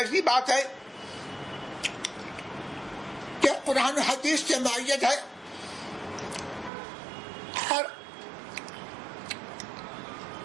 بات ہے کہ قرآن و حدیث سے معیت ہے اور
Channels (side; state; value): left; drops out; at 6.7 s